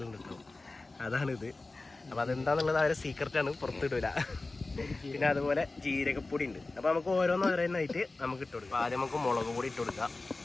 ഉണ്ട് കേട്ടോ, അതാണിത്. അപ്പോൾ അതെന്താണെന്നുള്ളത് അവരെ സീക്രട്ടാണ്, പുറത്തിടില്ല. പിന്നെ അതുപോലെ ജീരകപ്പൊടി ഉണ്ട്. അപ്പോൾ നമുക്ക് ഓരോന്നായിട്ട് നമുക്ക് ഇട്ട് കൊടുക്കാം. ആദ്യം നമുക്ക് മുളക് പൊടി ഇട്ട് കൊടുക്കാം,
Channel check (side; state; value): right; quieter; 3.3 dB